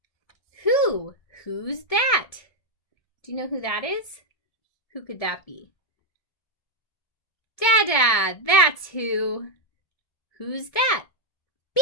Who? Who's that? Do you know who that is? Who could that be? Dada. That's who. Who's that?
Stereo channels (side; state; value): right; late; 1.7 ms